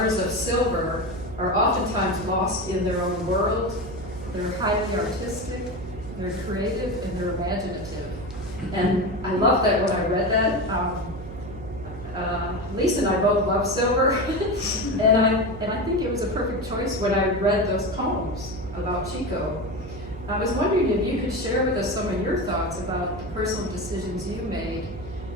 of silver are oftentimes lost in their own world. They're highly artistic, they're creative, and they're imaginative. And I love that when I read that. Lisa and I both love silver, and I think it was a perfect choice when I read those poems about Chico. I was wondering if you could share with us some of your thoughts about the personal decisions you made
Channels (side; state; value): right; noise; hum, 12 dB below the sound